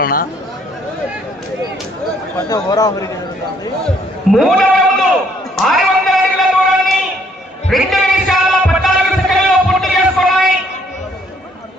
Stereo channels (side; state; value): both; normal; correlation 0.66